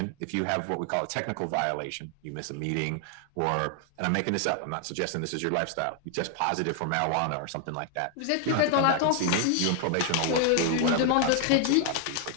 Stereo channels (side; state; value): both; different; correlation 0.00